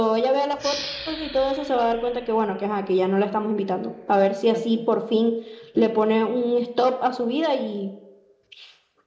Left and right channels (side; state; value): both; identical; correlation 1.00